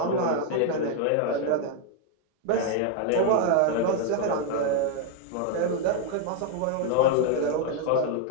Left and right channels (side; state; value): both; different; correlation 0.00